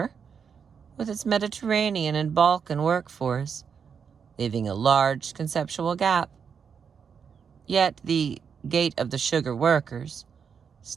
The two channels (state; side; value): quieter; left; 6.7 dB